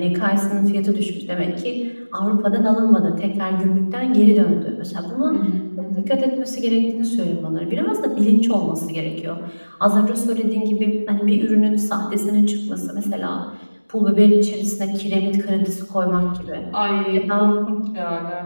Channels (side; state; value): both; inverted; correlation -1.00